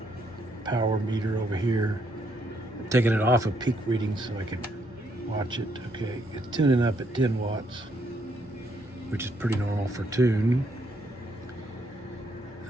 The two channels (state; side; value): normal; both; correlation 0.73